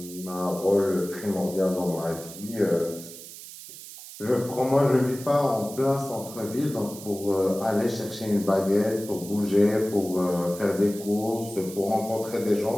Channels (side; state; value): right; noise; hiss, 14 dB below the sound